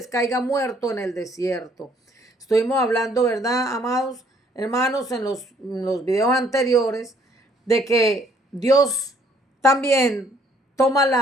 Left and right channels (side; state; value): both; normal; correlation 0.64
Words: caiga muerto en el desierto. Estuvimos hablando, ¿verdad, amados hermanos, en los videos anteriores, de que Dios también toma